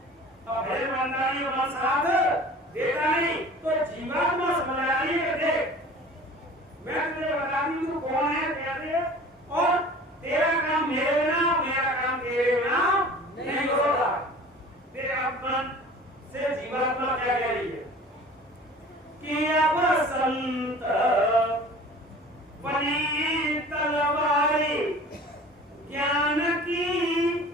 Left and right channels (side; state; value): both; normal; correlation 0.43